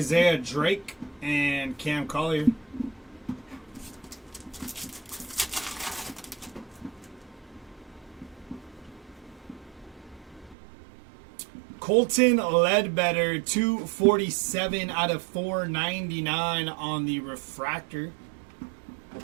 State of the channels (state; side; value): drops out; left; at 10.6 s